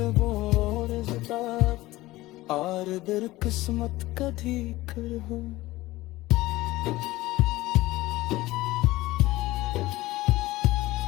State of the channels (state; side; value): quieter; right; 18.3 dB